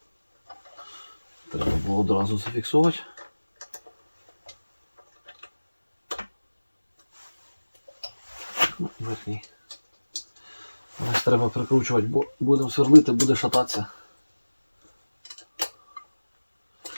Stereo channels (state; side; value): inverted; both; correlation -1.00